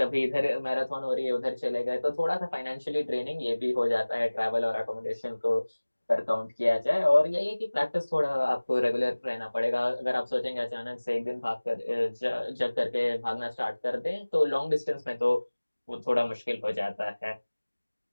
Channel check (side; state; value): both; inverted; correlation -1.00